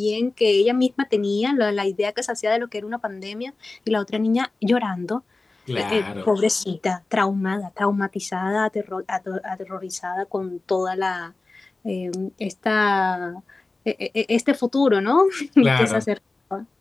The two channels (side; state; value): right; quieter; 3.4 dB